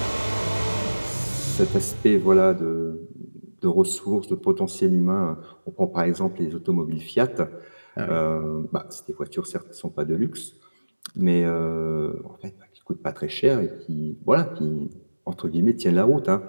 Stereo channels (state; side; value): inverted; both; correlation -1.00